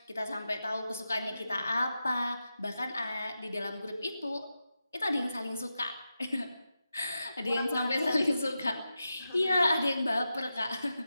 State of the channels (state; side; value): inverted; both; correlation -0.90